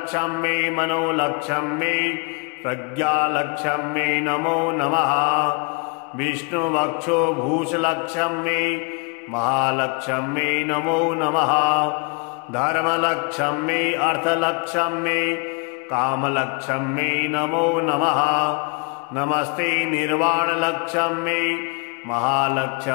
मनोलक्ष्म्यै प्रज्ञालक्ष्म्यै नमो नमः। विष्णुवक्षो भूषलक्ष्म्यै महालक्ष्म्यै नमो नमः। धर्मलक्ष्म्यै अर्थलक्ष्म्यै कामलक्ष्म्यै नमो नमः। नमस्ते निर्वाणलक्ष्म्यै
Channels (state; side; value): quieter; right; 33.9 dB